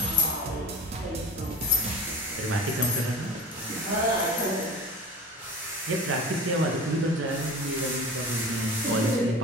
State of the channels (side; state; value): both; normal; correlation 0.35